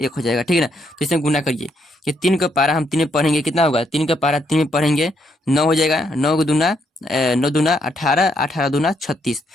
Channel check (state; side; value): normal; both; correlation 0.75